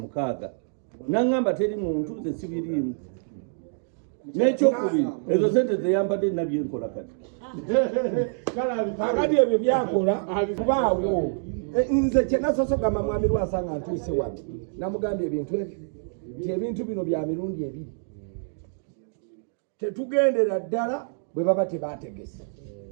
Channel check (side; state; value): left; silent; digital silence